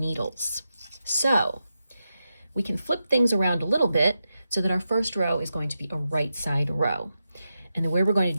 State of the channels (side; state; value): both; inverted; correlation -0.88